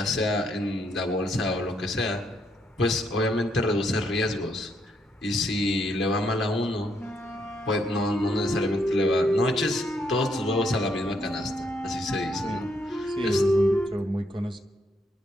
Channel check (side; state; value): both; normal; correlation 0.75